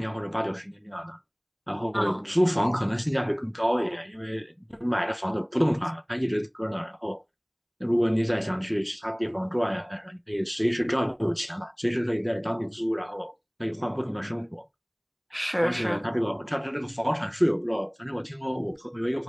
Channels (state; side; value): identical; both; correlation 1.00